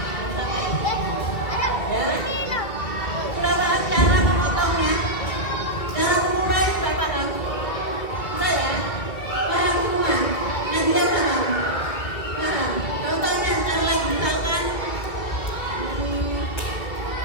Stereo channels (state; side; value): late; right; 2.4 ms